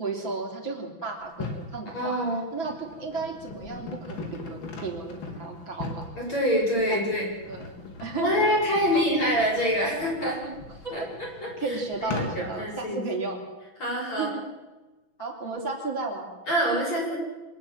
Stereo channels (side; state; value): right; late; 6.0 ms